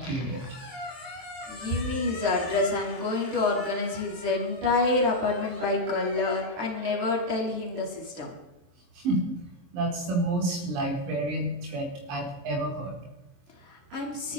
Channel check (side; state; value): left; late; 23 ms